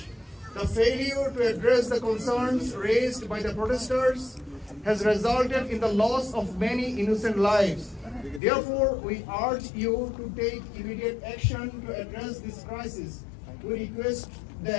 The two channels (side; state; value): right; drops out; at 8.4 s